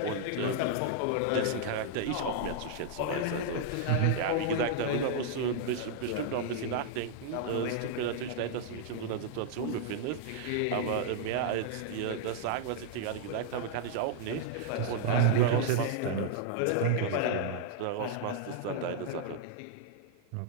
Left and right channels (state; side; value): different; both; correlation -0.01